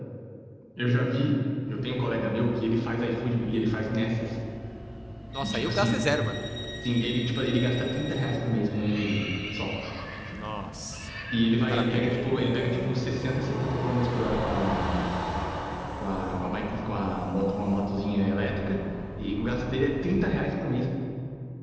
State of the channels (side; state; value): both; identical; correlation 1.00